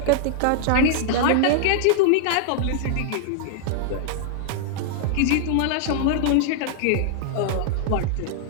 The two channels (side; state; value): both; different; correlation -0.01